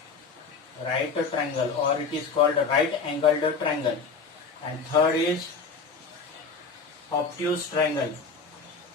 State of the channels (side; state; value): right; quieter; 4.7 dB